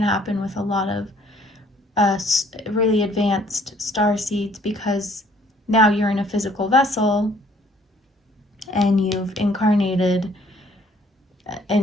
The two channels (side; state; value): both; normal; correlation 0.61